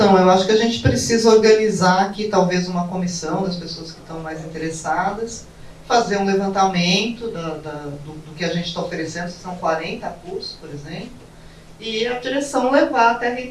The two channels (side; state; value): both; identical; correlation 1.00